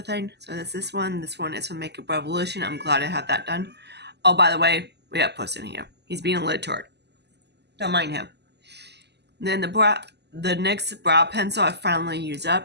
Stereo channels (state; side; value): late; left; 0.49 ms